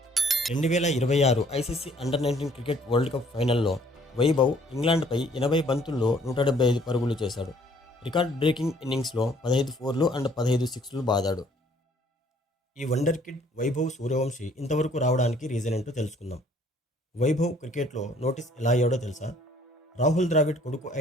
2026 ICC under-19 cricket world cup ఫైనల్లో వైభవ్ ఇంగ్లాండ్పై 80 బంతుల్లో 175 పరుగులు చేశాడు. రికార్డ్ బ్రేకింగ్ ఇన్నింగ్స్లో 15 ఫోర్లు అండ్ 15 సిక్స్లు బాదాడు. ఈ వండర్ కిడ్ వైభవ్ సూర్యవంశి ఇంతవరకు రావడానికి రీజన్ ఏంటో తెలుసుకుందాం. వైభవ్ క్రికెట్లో నోటీస్ ఎలా అయ్యాడో తెలుసా? రాహుల్ ద్రావిడ్ కొడుకు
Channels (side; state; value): both; normal; correlation 0.60